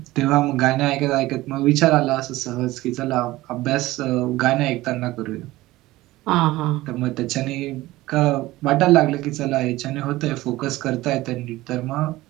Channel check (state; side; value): quieter; left; 17.9 dB